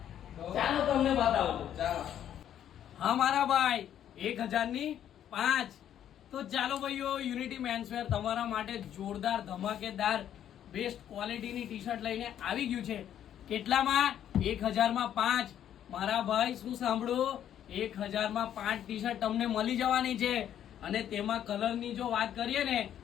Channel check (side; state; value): right; quieter; 10.4 dB